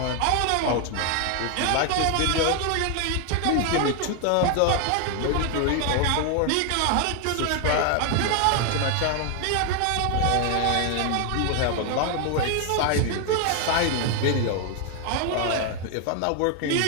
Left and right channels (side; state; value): both; different; correlation 0.01